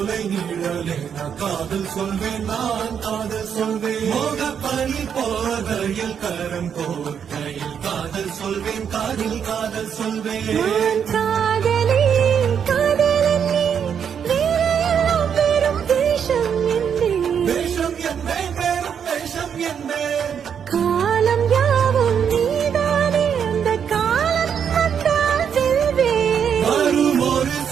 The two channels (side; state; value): left; quieter; 7.7 dB